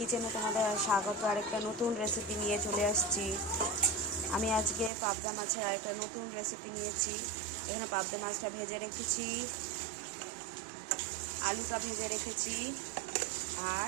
तुम्हारे स्वागत। आरेकटा नतून रेसिपि निये चले आसछि। आमी आजके पाबदा माछेर आरेकटा नतून रेसिपि नियेछि। एखाने पाबदा माछटा भेजे रेखेछि, आलूटा भेजे रेखेछि और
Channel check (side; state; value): left; drops out; at 4.9 s